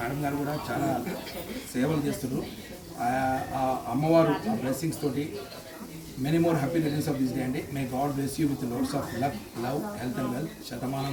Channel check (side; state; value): both; identical; correlation 1.00